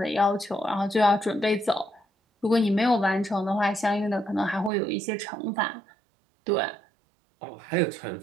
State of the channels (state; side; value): drops out; left; at 4.7 s